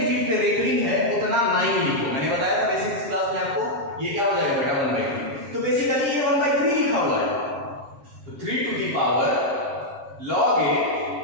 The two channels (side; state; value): left; late; 7.3 ms